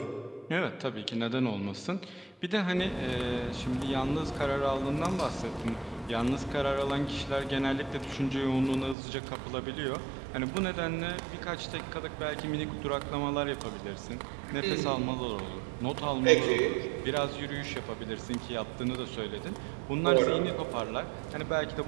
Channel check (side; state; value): left; drops out; at 9.0 s